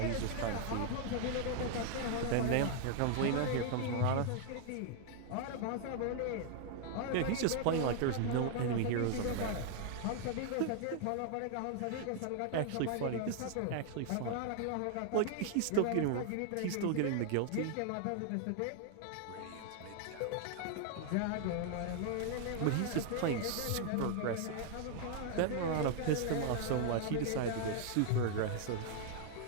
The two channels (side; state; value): both; different; correlation 0.00